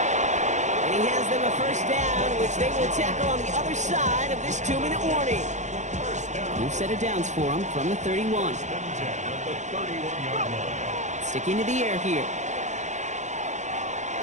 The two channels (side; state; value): left; late; 0.34 ms